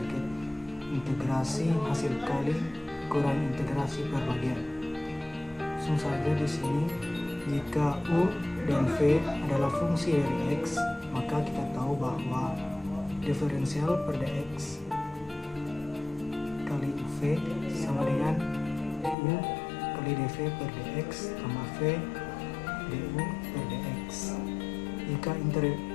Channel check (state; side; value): drops out; right; at 19.2 s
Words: integrasi hasil kali kurang integrasi per bagian. Langsung saja di sini, jika U dan V adalah fungsi dari X, maka kita tahu bahwa diferensial per dx kali UV sama dengan U kali dv per dx tambah v du per dx. Jika